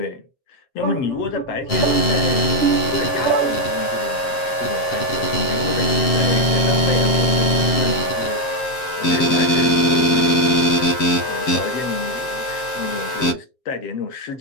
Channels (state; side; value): late; right; 7.5 ms